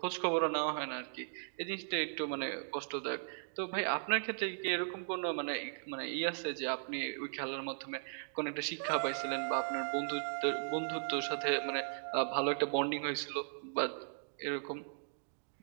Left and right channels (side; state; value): left; silent; digital silence